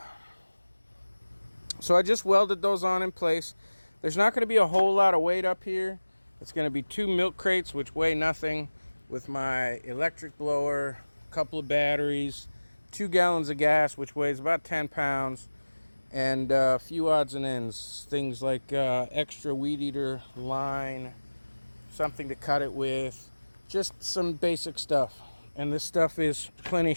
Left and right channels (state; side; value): inverted; both; correlation -1.00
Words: So I just welded those on in place. There's not going to be a whole lot of weight up here. It's going to be 2 milk crates, which weigh nothing, with my electric blower, a couple of batteries, 2 gallons of gas, which weighs about 10 pounds, and a few odds and ends. Things like extra Weedeater line, something to cut it with, just some basic stuff. And this stuff is plenty